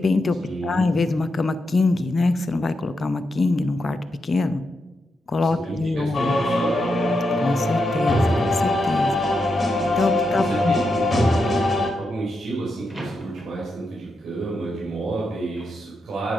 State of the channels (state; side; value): normal; both; correlation 0.85